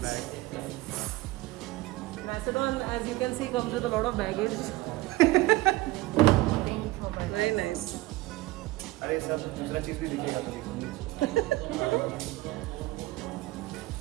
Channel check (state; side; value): quieter; left; 19.4 dB